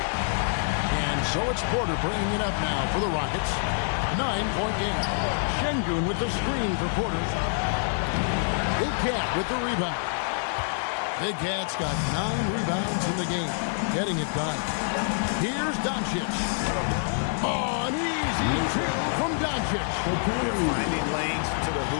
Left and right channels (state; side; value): silent; right; 60 dB below the other